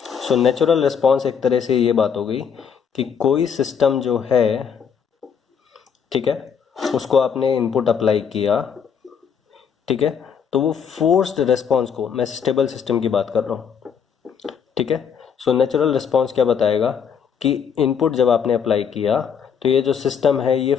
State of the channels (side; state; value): right; quieter; 7.1 dB